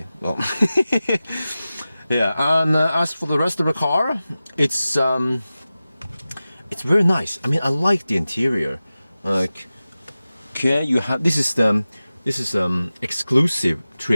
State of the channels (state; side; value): inverted; both; correlation -0.95